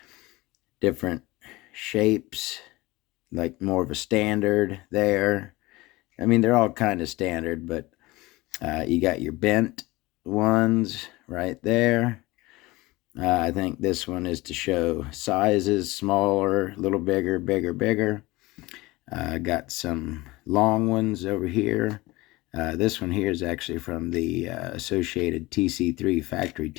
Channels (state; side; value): quieter; right; 20.9 dB